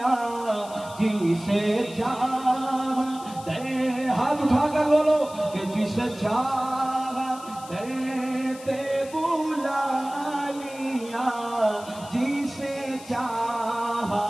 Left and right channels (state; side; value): noise; left; hiss, 18 dB below the sound